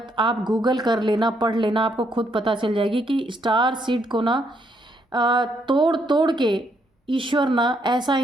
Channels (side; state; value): both; normal; correlation 0.73